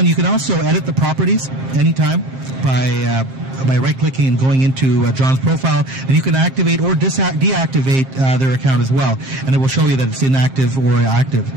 you can also edit the properties anytime by right-clicking and going into John's profile, and you can activate or deactivate their account as well, and it will show you that it's inactive or active.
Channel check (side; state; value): left; late; 7.5 ms